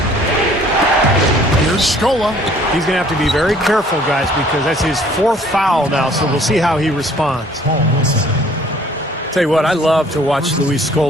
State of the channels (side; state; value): both; normal; correlation 0.56